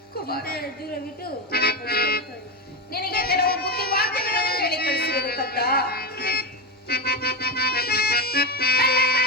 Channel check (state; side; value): normal; both; correlation 0.15